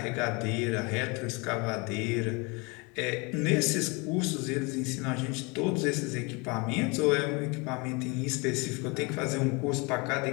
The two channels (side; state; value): right; quieter; 28.7 dB